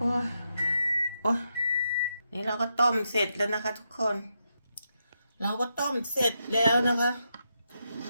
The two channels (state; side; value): inverted; both; correlation -0.84